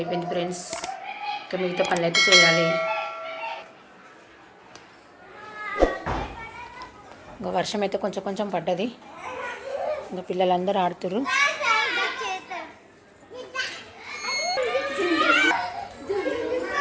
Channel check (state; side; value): identical; both; correlation 1.00